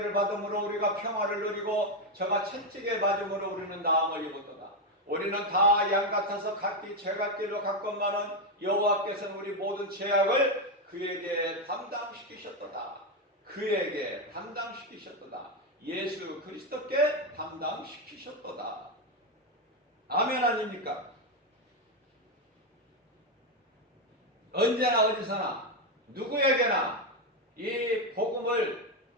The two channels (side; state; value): both; normal; correlation 0.06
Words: 받음으로 우리가 평화를 누리고 저가 채찍에 맞음으로 우리는 나음을 입었도다. 우리는 다 양 같아서 각기 죄갓길로 갔건만은 여호와께서는 우리 모든 죄악을 그에게 담당시키셨도다. 그에게 담당시키셨도다. 예수 그리스도께 담당시키셨도다. 아멘 아닙니까? 언제나 어디서나 누구에게나 이 복음을